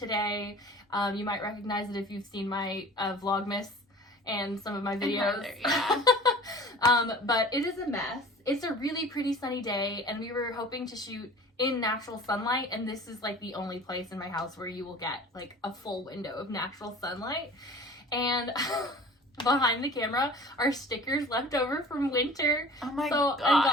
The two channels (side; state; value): both; normal; correlation 0.43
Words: You might recognize it if you've seen my Vlogmas and some of my videos. Yeah. But it is a mess. It's a really pretty sunny day, and we were hoping to shoot in natural sunlight, and this is the only place in my house where you will get a full window of natural sunlight. And behind the camera are stickers left over from winter. Oh my god. So